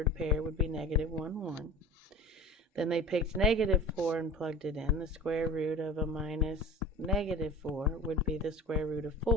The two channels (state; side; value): normal; both; correlation 0.37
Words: pair would be -1, 1. Then they picked -4 and plugged it in. The square root of a minus -4 would be the square root of